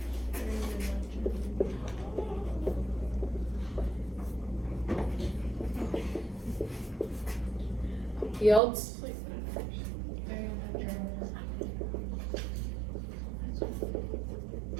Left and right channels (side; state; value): left; drops out; at 8.6 s